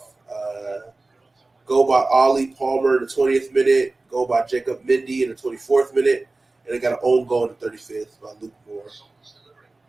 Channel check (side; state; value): left; quieter; 3.2 dB